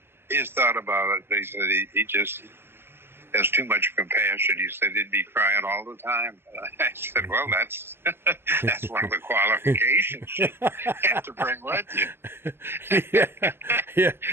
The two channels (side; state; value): left; late; 0.11 ms